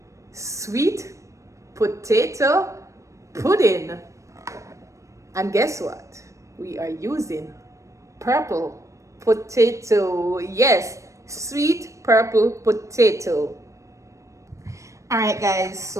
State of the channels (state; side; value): late; left; 0.15 ms